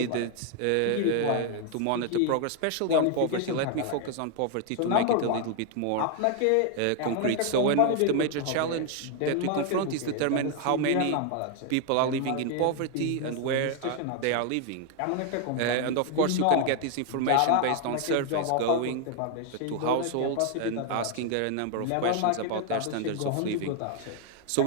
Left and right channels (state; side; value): different; both; correlation 0.00